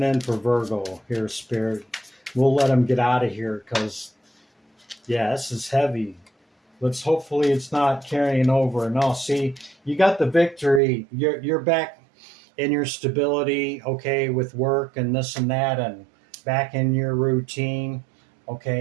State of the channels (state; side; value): drops out; left; at 10.8 s